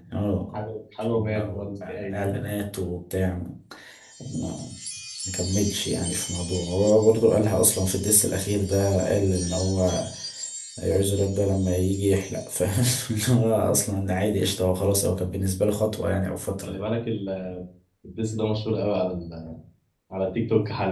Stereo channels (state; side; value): identical; both; correlation 1.00